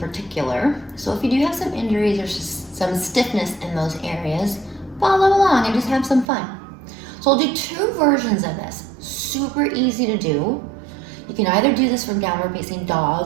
So if you do have some injuries or some stiffness in those areas, follow along and just have some fun. So I'll do two versions of this, super easy to do. You can either do this from downward facing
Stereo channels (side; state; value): left; drops out; at 6.2 s